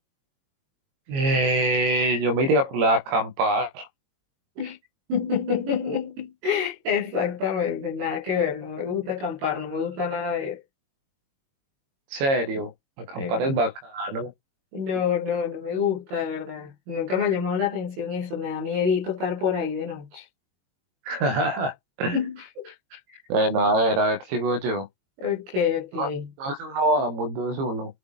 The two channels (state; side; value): late; left; 22 ms